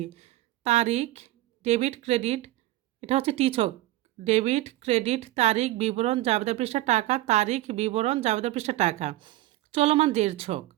তারিখ, ডেবিট, ক্রেডিট। এটা হচ্ছে টি ছক। ডেবিট, ক্রেডিট, তারিখ, বিবরণ, জাবেদা পৃষ্ঠা, টাকা, তারিখ, বিবরণ, জাবেদা পৃষ্ঠা, টাকা। চলমান জেড ছক,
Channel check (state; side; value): quieter; left; 16.1 dB